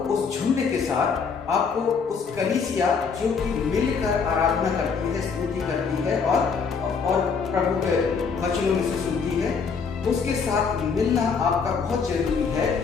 उस झुंड के साथ, आपको उस कलीसिया जो कि मिलकर आराधना करती है, स्तुति करती है और प्रभु के वचनों में से सुनती है, उसके साथ मिलना आपका बहुत जरूरी है।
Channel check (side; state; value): right; quieter; 5.6 dB